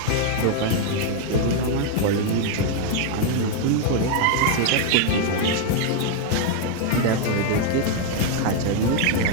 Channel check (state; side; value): different; both; correlation 0.00